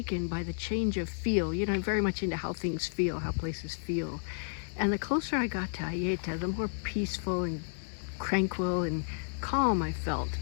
by the change of feel. I'm very much into how things feel, how places feel. And the closer I got to Aieta, the more peaceful and tranquil and calm I felt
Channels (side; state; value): right; silent; digital silence